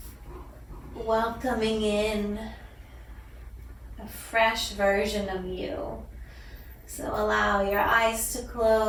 welcoming in a fresh version of you. So allow your eyes to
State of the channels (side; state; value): both; identical; correlation 1.00